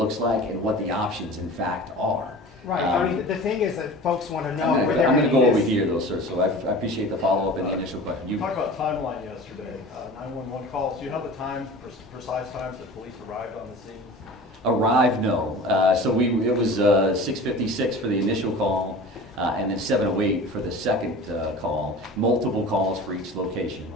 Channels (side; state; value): both; normal; correlation 0.38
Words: like, and what the options in fact are. Right, I mean, the thing is that folks want to know I'm where they're going to getting go over this. here though, sir, so I appreciate the follow-up and the initial question. You talked about timeline yesterday, 911 calls. Do you know the time, precise times that police arrived on the scene? Arrive, no. So it was 6:56 for the initial call, and then 7:08 for the second call. Multiple calls for each location.